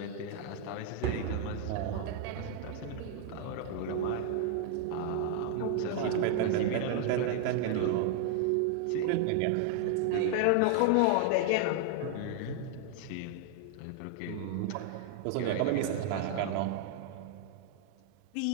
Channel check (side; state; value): both; different; correlation 0.00